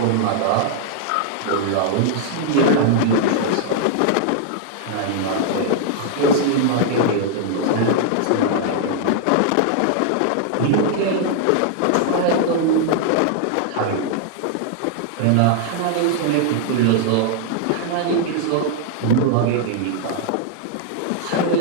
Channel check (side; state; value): both; different; correlation -0.01